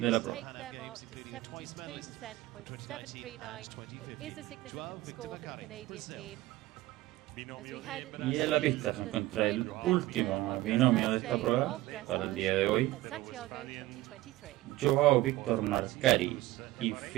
la prueba. Y en la pista se encuentra el último binomio de esta prueba para el día de hoy: Joao Victor Marcari y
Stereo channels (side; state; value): left; quieter; 17.2 dB